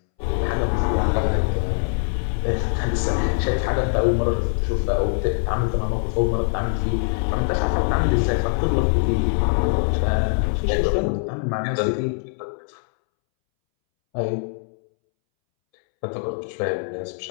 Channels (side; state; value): right; silent; 64 dB below the other